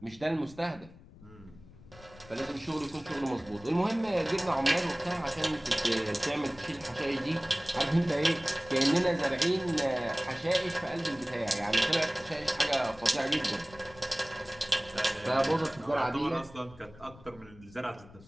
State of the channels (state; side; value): noise; left; rumble, 21 dB below the sound